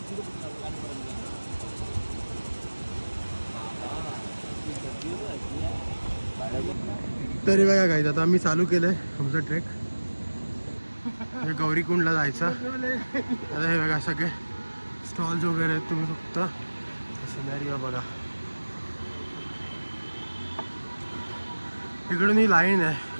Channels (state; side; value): inverted; both; correlation -1.00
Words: तरी बघा काय आता आम्ही चालू केलंय आमचं ट्रेक. हे गौरीकुंडला जायचं. आता हे बघा सगळे स्टॉल्स वगैरे आहेत. तुम्ही फक्त सिनॅरिओ बघा. इकडून ही लाईन